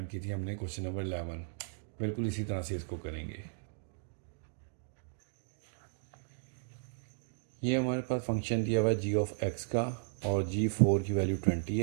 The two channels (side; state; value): left; silent; digital silence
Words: की थी हमने, क्वेश्चन नंबर 11, बिल्कुल इसी तरह से इसको करेंगे। ये हमारे पास फंक्शन दिया हुआ है जी ऑफ एक्स का, और G4 की वैल्यू 20